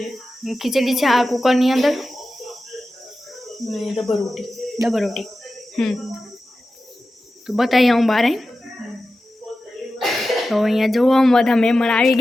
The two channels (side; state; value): both; normal; correlation 0.93